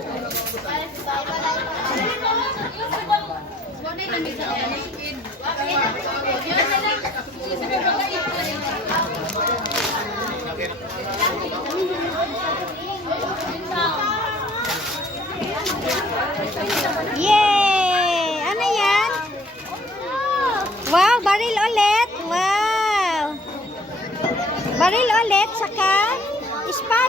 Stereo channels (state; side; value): normal; both; correlation 0.56